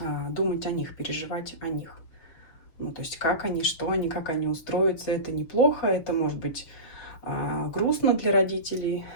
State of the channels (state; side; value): late; right; 6.5 ms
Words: думать о них, переживать о них. Ну, то есть как они, что они, как они устроятся, это неплохо, это может быть грустно для родителей.